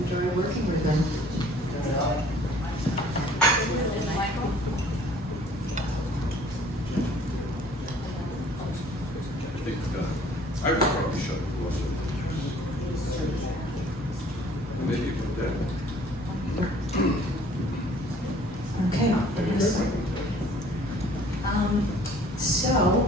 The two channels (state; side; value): normal; both; correlation 0.54